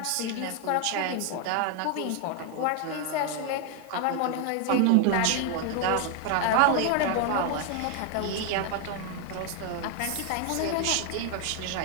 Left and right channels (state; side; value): different; both; correlation 0.01